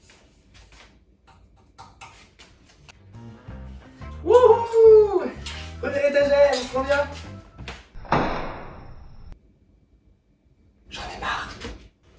Wouhou! Prenez l'étagère, trop bien! J'en ai marre!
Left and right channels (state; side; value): identical; both; correlation 1.00